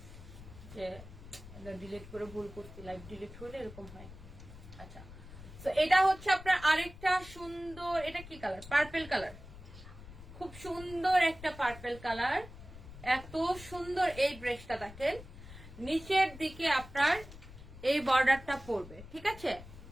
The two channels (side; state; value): left; noise; rumble, 16 dB below the sound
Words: যে ডিলিট করে ভুল করছি, লাইভ ডিলিট হলে এরকম হয়। আচ্ছা, তো এটা হচ্ছে আপনার আরেকটা সুন্দর, এটা কি কালার? পার্পল কালার, খুব সুন্দর একটা পার্পল কালার। এত সুন্দর এই ড্রেসটা দেখেন, নিচের দিকে আপনার এই বর্ডারটা পড়বে, ঠিক আছে।